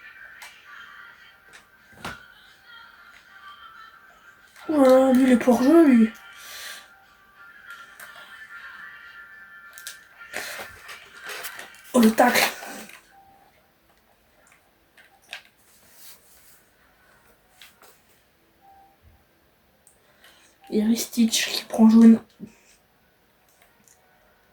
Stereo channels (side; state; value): both; identical; correlation 1.00